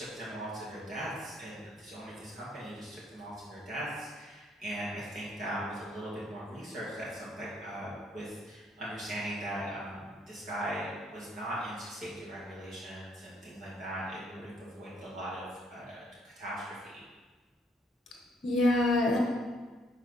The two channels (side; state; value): both; normal; correlation 0.67